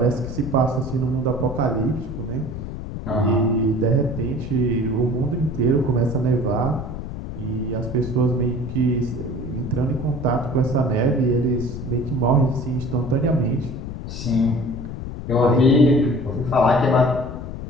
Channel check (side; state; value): left; noise; rumble, 8 dB below the sound